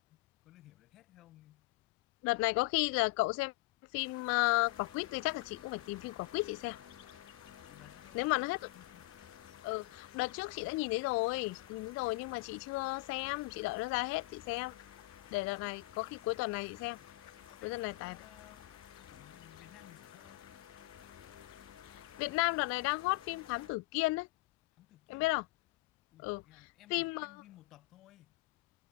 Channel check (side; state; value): right; quieter; 22.3 dB